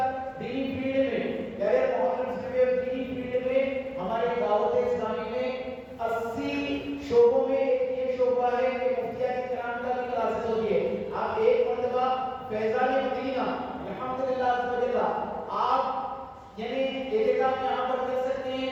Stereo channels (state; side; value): identical; both; correlation 1.00